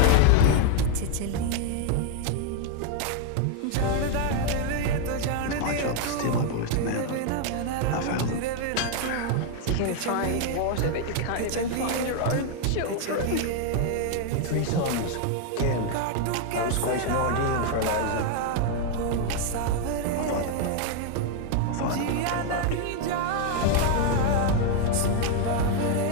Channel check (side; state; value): both; different; correlation 0.00